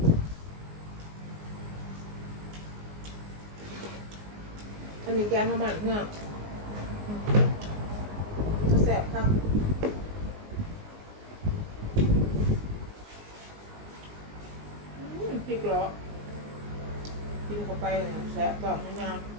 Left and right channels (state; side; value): late; left; 19 ms